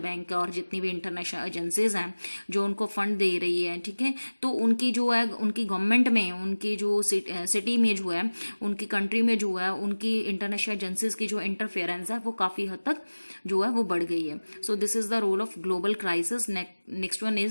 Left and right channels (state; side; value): inverted; both; correlation -1.00